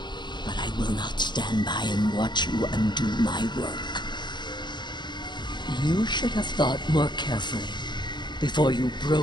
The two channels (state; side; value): late; right; 0.21 ms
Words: But I will not stand by and watch you undo my work. You should have thought more carefully before you